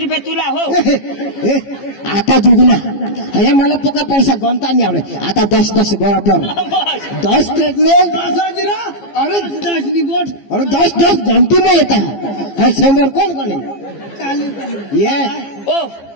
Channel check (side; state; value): right; late; 15 ms